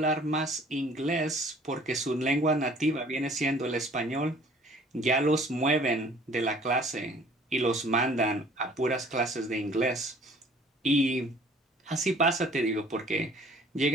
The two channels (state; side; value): normal; both; correlation 0.53